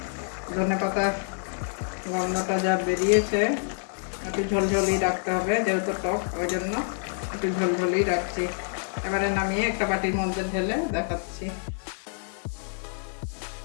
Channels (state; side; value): silent; right; digital silence